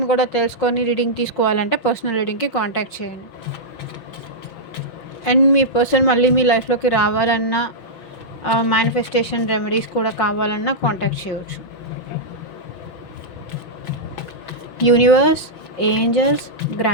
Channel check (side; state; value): right; late; 6.1 ms